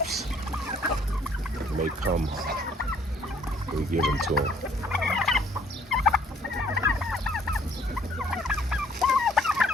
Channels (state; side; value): normal; both; correlation 0.61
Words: may come, we give them to them.